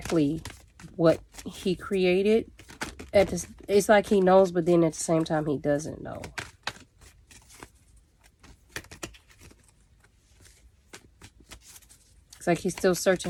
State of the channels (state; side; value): identical; both; correlation 1.00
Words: what he created. It's like he knows, but then at the same time he doesn't know. It's like he's still searching